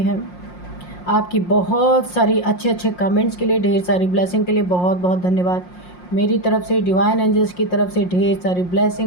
आपकी बहुत सारी अच्छे अच्छे कमेंट्स के लिए, ढेर सारी ब्लेसिंग के लिए बहुत बहुत धन्यवाद। मेरी तरफ से, डिवाइन एंजल्स की तरफ से ढेर सारी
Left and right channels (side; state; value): right; late; 5.6 ms